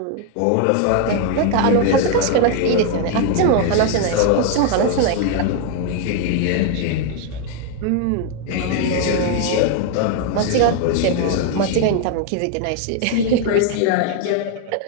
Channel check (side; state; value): both; different; correlation 0.00